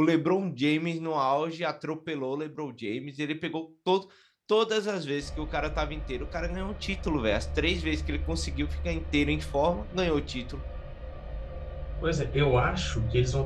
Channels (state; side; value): identical; both; correlation 1.00